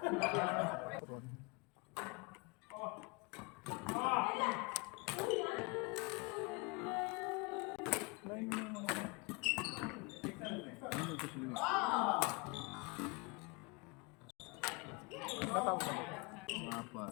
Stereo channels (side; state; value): right; quieter; 28.4 dB